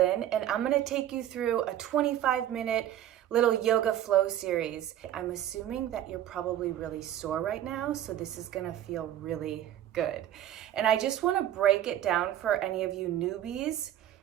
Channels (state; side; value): quieter; left; 11.8 dB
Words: and I'm going to take you through a 25-minute little yoga flow series. I'm assuming that you're probably really sore right now, so this is going to feel really good. And I just want to break it down for any of you newbies.